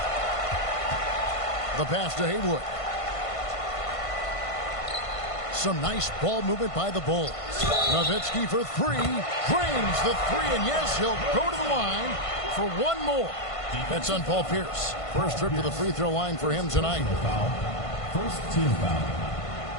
The pass to Haywood. Some nice ball movement by the Bulls. Nowitzki for 3. Drains the 3, and yes, he'll go to the line for one more. That's on Paul Pierce. First trip to the free throw line for him tonight. First team foul.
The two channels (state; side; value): late; right; 1.5 ms